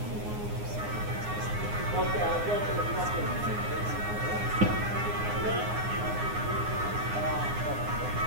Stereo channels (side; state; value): left; late; 9.6 ms